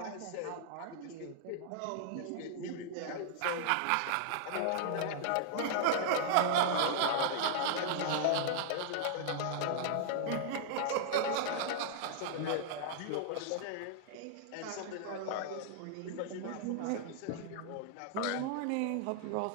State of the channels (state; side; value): different; both; correlation -0.01